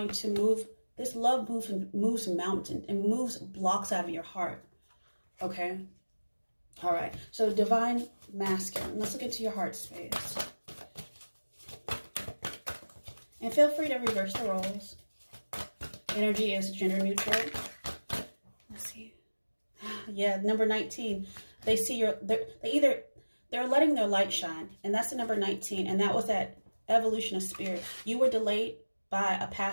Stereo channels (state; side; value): inverted; both; correlation -1.00